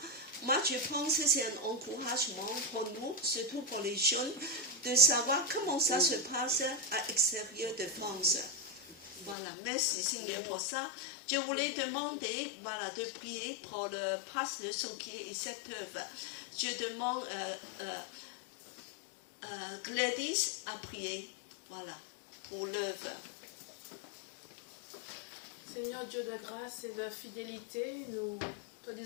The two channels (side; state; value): right; drops out; at 9.3 s